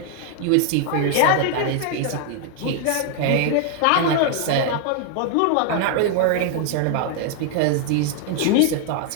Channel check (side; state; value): both; different; correlation 0.00